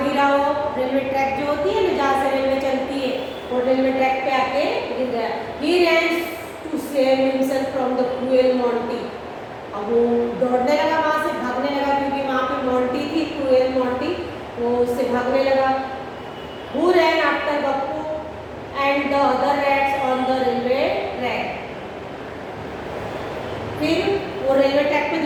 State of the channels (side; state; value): both; identical; correlation 1.00